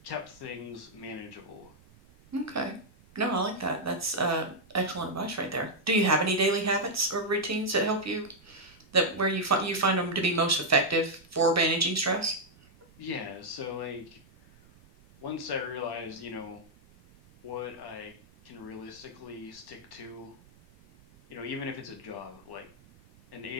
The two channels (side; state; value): right; noise; rumble, 26 dB below the sound